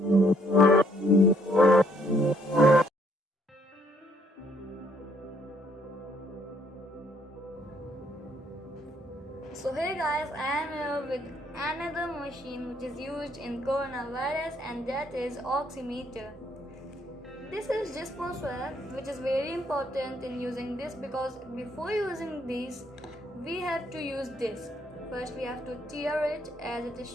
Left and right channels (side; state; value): both; normal; correlation 0.68